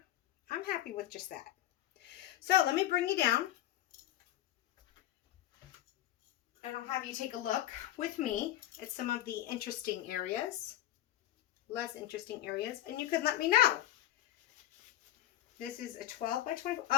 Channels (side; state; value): right; quieter; 13.5 dB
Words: I'm happy with just that. So let me bring you down. And I'll have you take a look with me at some of the interesting areas, less interesting areas, and you can let me know. This is a 12 by 24.